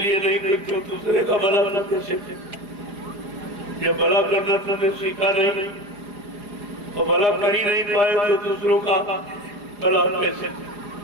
नहीं करते हो, दूसरे का भला कैसे? जब भला करना तुम्हें सीखा नहीं और भला कर ही नहीं पाए तो दूसरों का भला कैसे?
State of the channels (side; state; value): left; late; 4.9 ms